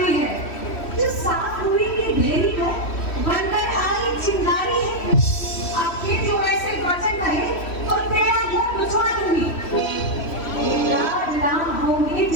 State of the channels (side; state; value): right; late; 3.1 ms